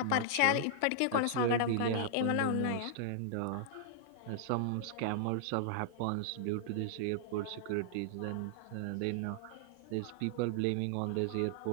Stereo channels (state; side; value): different; both; correlation -0.01